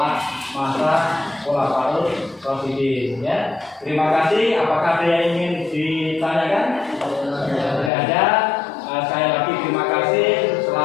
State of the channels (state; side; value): drops out; right; at 7.9 s